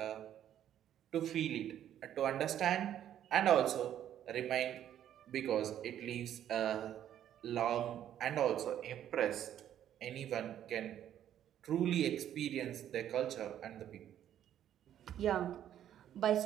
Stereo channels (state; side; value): quieter; left; 10.8 dB